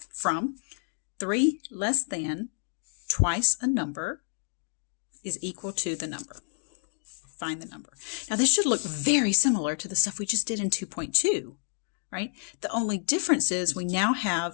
From 3 less than twice a number is equal to the number. Find the number. Now this should look very similar to the stuff we just did in 2.2, right? The only difference is we now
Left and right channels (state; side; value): silent; right; 59 dB below the other